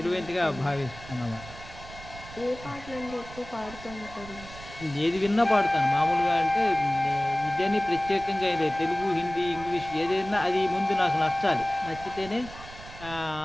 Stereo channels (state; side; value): noise; right; rumble, 15 dB below the sound